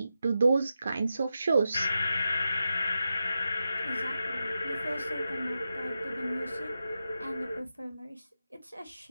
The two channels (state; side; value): inverted; both; correlation -0.89